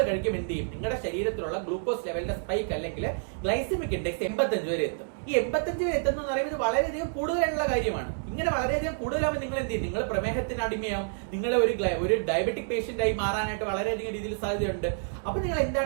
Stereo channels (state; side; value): silent; left; digital silence